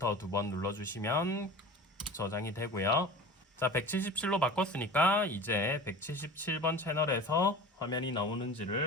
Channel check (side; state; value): both; normal; correlation 0.37